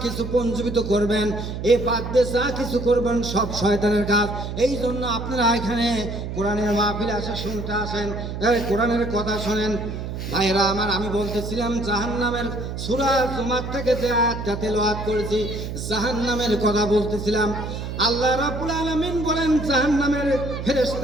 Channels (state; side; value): noise; right; hum, 6 dB below the sound